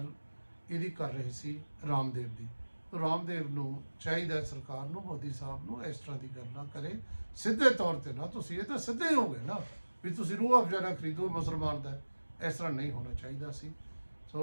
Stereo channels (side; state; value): both; inverted; correlation -1.00